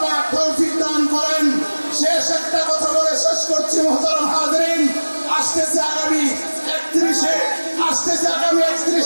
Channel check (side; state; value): both; inverted; correlation -1.00